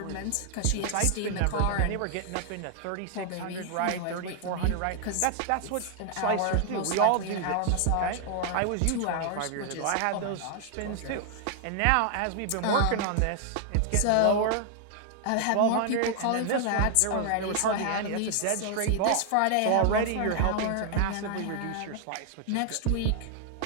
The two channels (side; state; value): both; different; correlation 0.00